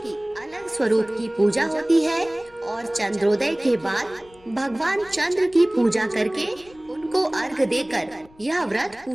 अलग स्वरूप की पूजा होती है और चंद्रोदय के बाद भगवान चंद्र की पूजा करके उनको अर्घ देकर यह व्रत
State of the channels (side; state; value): left; noise; rumble, 27 dB below the sound